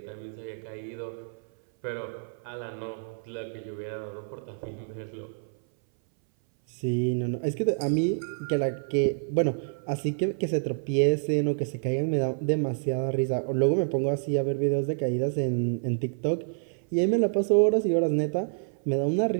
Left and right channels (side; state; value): left; silent; 58 dB below the other